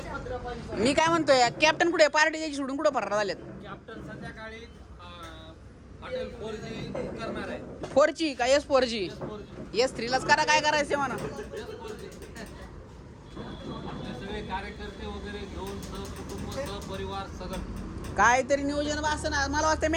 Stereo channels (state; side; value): identical; both; correlation 1.00